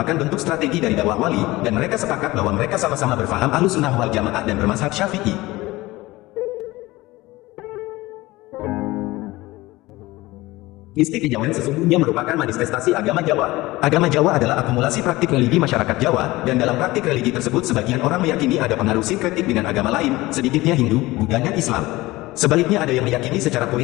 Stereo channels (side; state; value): right; quieter; 19.6 dB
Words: bentuk strategi dari dakwah wali, dan mereka sepakat bahwa mereka sama-sama berfaham Ahlussunnah wal Jamaah dan bermazhab Syafi'i. Mistik kejawen sesungguhnya merupakan manifestasi agama Jawa. Agama Jawa adalah akumulasi praktik religi masyarakat Jawa, dan dalam praktik religi tersebut sebagian orang meyakini ada pengaruh sinkretik dengan agama lain, sedikitnya Hindu, Buddha dan Islam. Sebaliknya ada yang meyakini secara